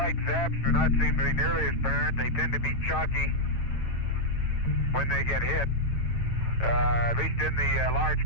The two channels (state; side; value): late; right; 9.0 ms